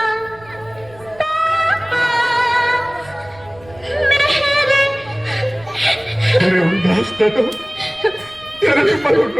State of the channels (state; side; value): noise; right; rumble, 24 dB below the sound